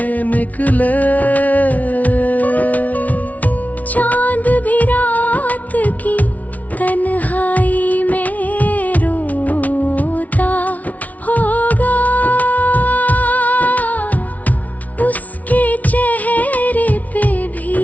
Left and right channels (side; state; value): right; late; 0.072 ms